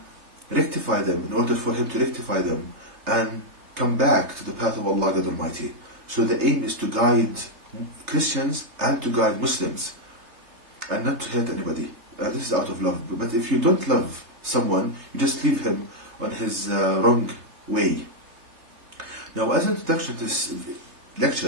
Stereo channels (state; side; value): late; left; 3.3 ms